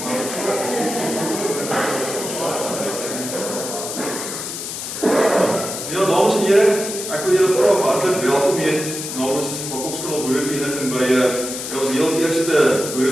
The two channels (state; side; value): noise; left; hiss, 6 dB below the sound